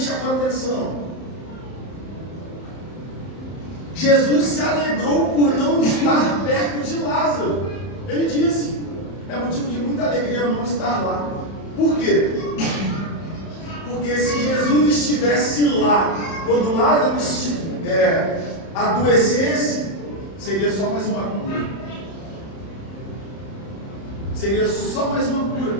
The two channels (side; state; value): right; late; 31 ms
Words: a atenção. Jesus se alegrou por não estar perto de Lázaro. Ele disse, é motivo de muita alegria não estar lá. Por quê? Porque se Jesus estivesse lá, quando Lázaro adoecesse, seria só mais uma cura. Seria só mais uma cura.